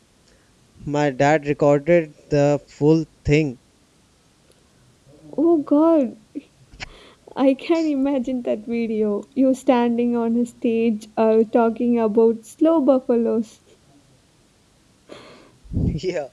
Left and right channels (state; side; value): identical; both; correlation 1.00